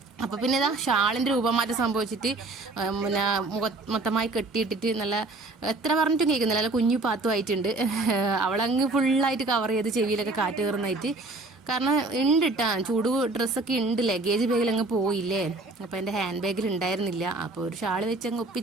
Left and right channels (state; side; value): quieter; left; 3.1 dB